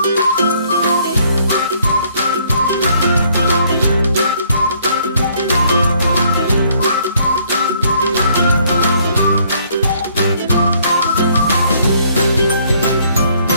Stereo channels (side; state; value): both; inverted; correlation -0.65